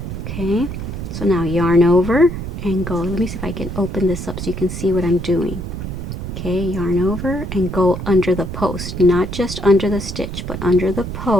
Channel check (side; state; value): right; noise; rumble, 6 dB below the sound